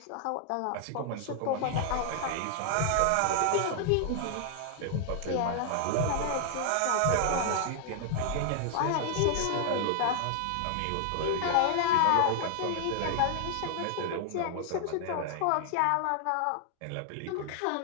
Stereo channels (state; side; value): different; both; correlation 0.00